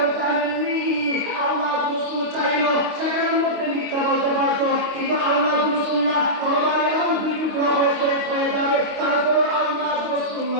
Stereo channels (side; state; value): left; late; 25 ms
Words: জানেননি? আল্লাহ রাসূল চাইলো সেখানের মধ্যে মিথ্যা বলতে পারতো, কিন্তু আল্লাহ রাসূল না, তরবারি এমন দুই টুকরা হয়ে যাবে, তারপর আল্লাহ রাসূল